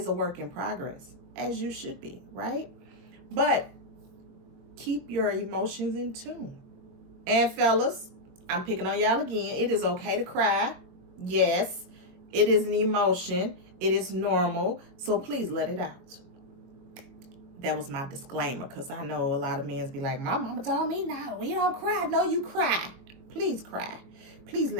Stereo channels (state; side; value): late; left; 22 ms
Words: a work in progress, as you should be, right? But keep your emotions in tune. And fellas, I'm picking on y'all again. It is okay to cry. Yes, it is an emotion. It is normal. So please let it out. That was my disclaimer, because I know a lot of men be like, my mama told me, no, we don't cry. No, you cry. Please cry. Please